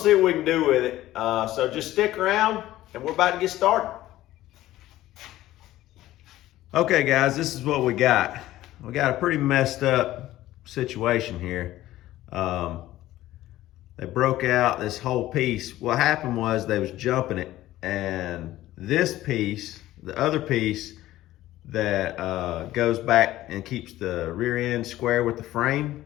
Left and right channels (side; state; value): right; quieter; 15.1 dB